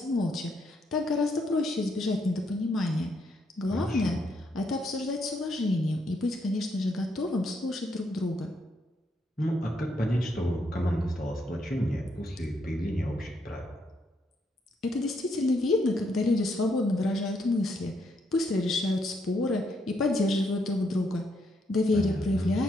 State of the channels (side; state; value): both; normal; correlation 0.75